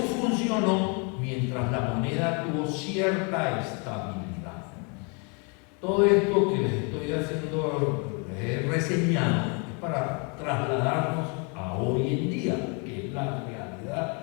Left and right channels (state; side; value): quieter; right; 34.9 dB